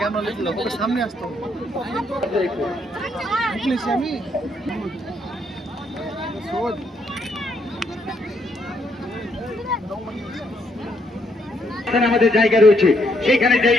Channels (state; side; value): normal; both; correlation 0.73